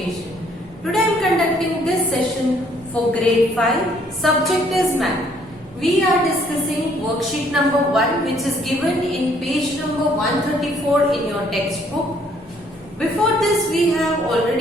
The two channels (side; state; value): both; normal; correlation 0.64